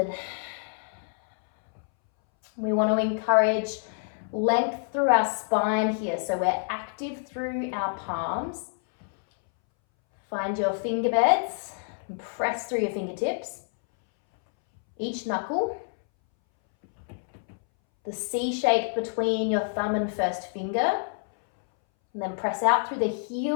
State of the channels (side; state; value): right; silent; 60 dB below the other